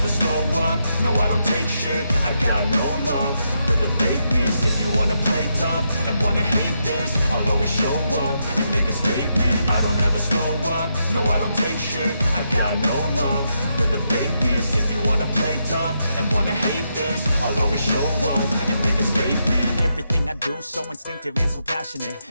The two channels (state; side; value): inverted; both; correlation -0.81